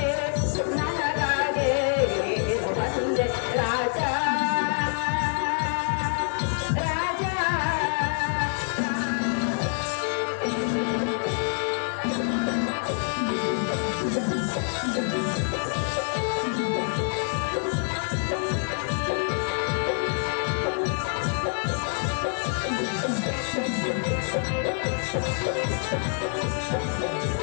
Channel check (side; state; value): right; silent; 61 dB below the other